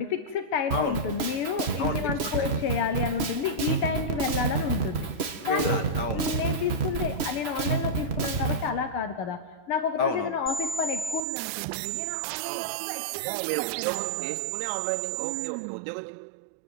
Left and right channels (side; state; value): left; drops out; at 11.2 s